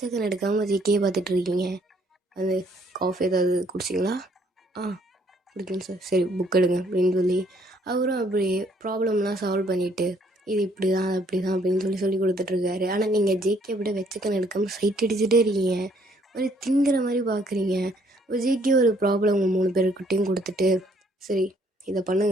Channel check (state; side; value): normal; both; correlation 0.66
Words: எடுக்காமல் ஜேக்கியே பார்த்துட்ருக்கீங்க. அது காஃபி ஏதாவது குடிச்சிங்களா? குடிக்கணும் சார். சரி புக் எடுங்க அப்படின்னு சொல்லி அவரும் அப்படியே ப்ராப்ளம்லாம் சால்வ் பண்ணிவிட்டு இது இப்படி தான் அப்படி தான் அப்படின்னு சொல்லி கொடுத்துட்ருக்காரு. ஆனால் நீங்கள் ஜேகே அப்படியே வெச்சக்கன் எடுக்காமல் சைட் அடிச்சுட்டே இருக்கீங்க, ஒரு திங்கிற மாதிரி பார்க்குறீங்க. ஜேகே ஒரு ப்ராப்ளம் உங்கள் 3 பேருக்கிட்டையும் கொடுத்துட்டு சரி இதை